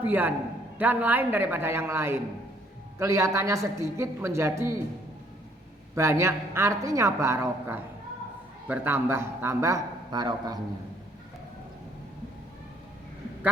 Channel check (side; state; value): both; normal; correlation 0.64